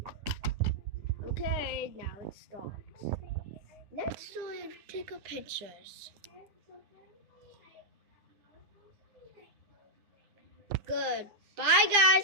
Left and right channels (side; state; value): left; late; 9.8 ms